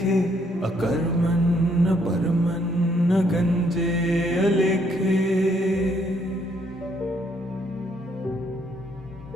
अकर्मन् न परमन् न गंजे अलेखे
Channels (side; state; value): both; normal; correlation 0.70